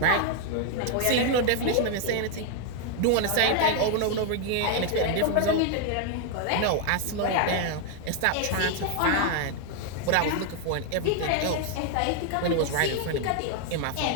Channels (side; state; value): both; different; correlation 0.00